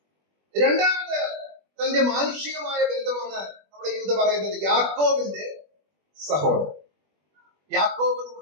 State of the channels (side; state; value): left; late; 21 ms